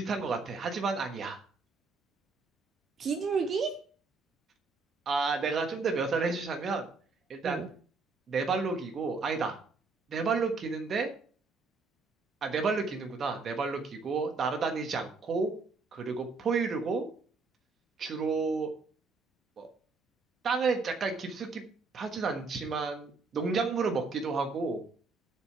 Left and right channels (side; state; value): left; quieter; 4.2 dB